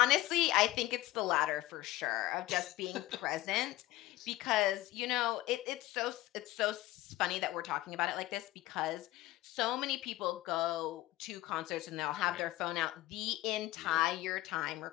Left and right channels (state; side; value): quieter; right; 16.8 dB